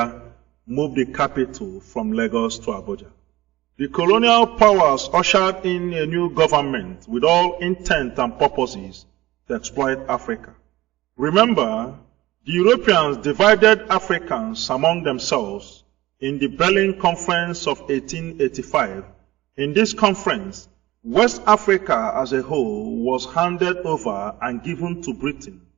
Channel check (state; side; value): quieter; left; 17.4 dB